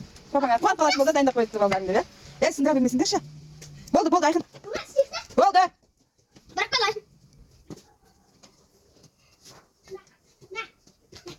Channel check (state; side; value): identical; both; correlation 1.00